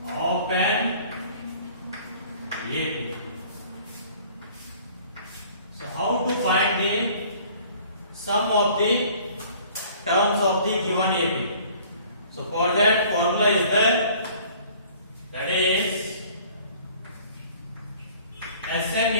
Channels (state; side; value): inverted; both; correlation -0.52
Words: of an AP. So how to find the sum of the terms of the given AP? So for that formula is there, that is Sn